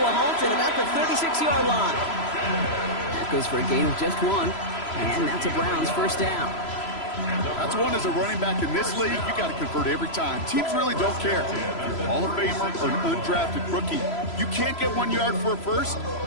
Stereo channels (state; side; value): late; right; 3.0 ms